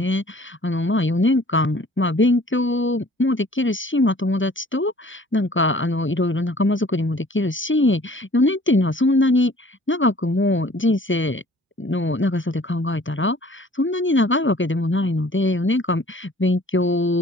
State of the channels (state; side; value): normal; both; correlation 0.52